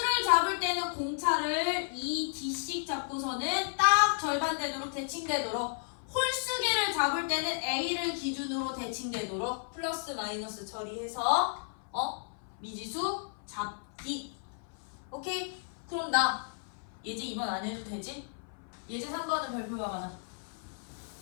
잡을 때는 공차를 2D씩 잡고서는 딱 절반 되도록 대칭되도록, 홀수계를 잡을 때는 A를 기준으로 대칭되도록 플러스 마이너스 처리해서 미지수 잡기. 오케이? 그럼 나 예제 2번 안 해도 되지? 예제 3번은 별표가 가나?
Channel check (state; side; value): silent; right; 56 dB below the other